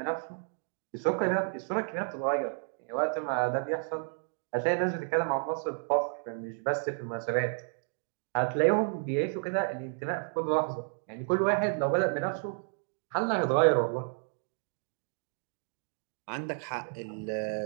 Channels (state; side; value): silent; left; 57 dB below the other